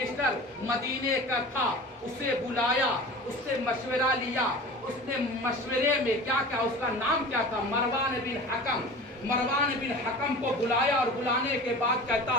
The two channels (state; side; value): normal; both; correlation 0.37